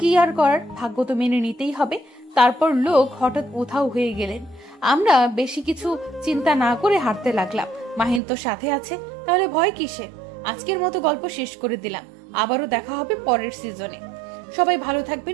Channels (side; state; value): left; drops out; at 8.2 s